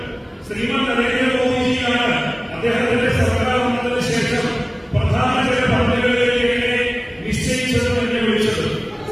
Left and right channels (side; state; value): both; identical; correlation 1.00